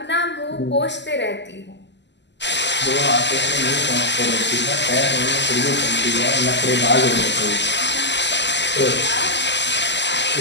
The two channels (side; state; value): right; late; 0.51 ms